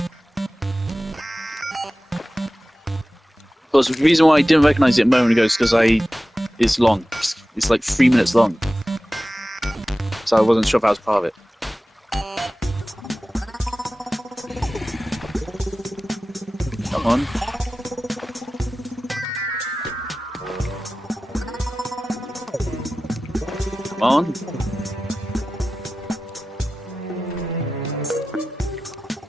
Of course, the reason why I didn't recognise it a moment ago is because it's long. It's like 3 minutes long. So I wasn't sure if I was part of it. Come on. Come on.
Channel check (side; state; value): both; normal; correlation 0.95